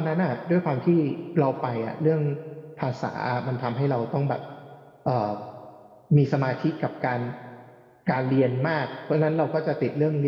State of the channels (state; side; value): identical; both; correlation 1.00